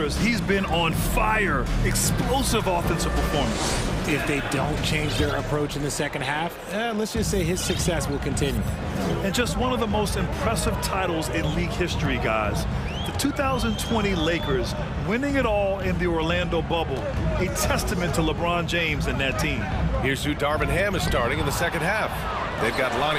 he's been on fire. Explosive offensive performance. If they don't change their approach in the second half, let's just say his success will continue. And just one of the most impressive titles in league history, guys. The 2020 Lakers winning it all in the Orlando bubble. A testament to LeBron James and that team. Here's who Darvin Ham is starting in the second half. They've got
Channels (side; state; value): both; identical; correlation 1.00